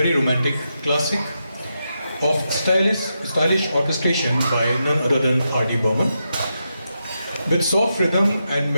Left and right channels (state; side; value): inverted; both; correlation -0.86